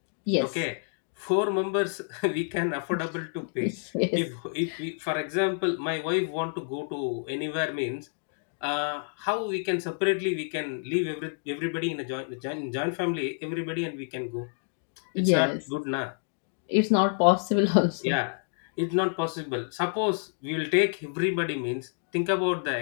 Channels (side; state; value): right; silent; digital silence